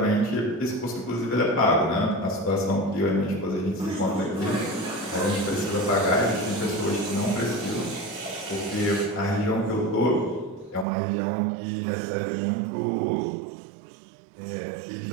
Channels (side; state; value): left; drops out; at 10.9 s